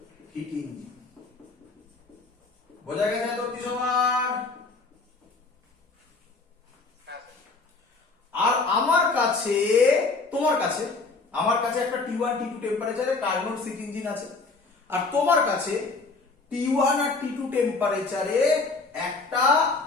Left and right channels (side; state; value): right; quieter; 3.8 dB